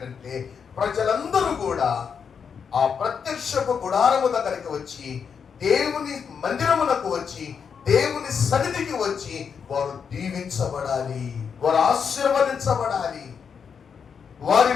ప్రజలందరూ కూడా ఆ ప్రత్యక్షపు గుడారము దగ్గరికి వచ్చి, దేవుని మందిరమునకు వచ్చి, దేవుని సన్నిధికి వచ్చి వారు దీవించబడాలి, వారు ఆశీర్వదించబడాలి, వారి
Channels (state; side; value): quieter; right; 6.6 dB